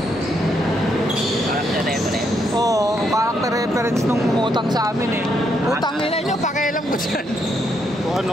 Character reference. Oo, character reference nung umutang sa amin eh. Utang nila nyo, pakialam ko dyan. Kung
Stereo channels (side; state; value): both; normal; correlation 0.76